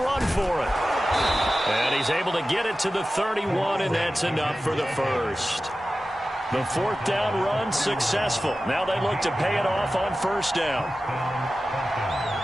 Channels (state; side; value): normal; both; correlation 0.94